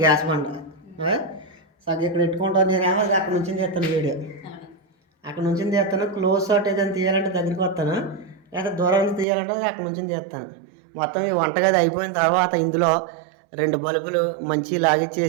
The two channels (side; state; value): left; drops out; at 9.2 s